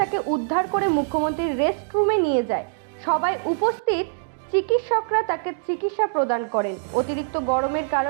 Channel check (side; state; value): left; silent; digital silence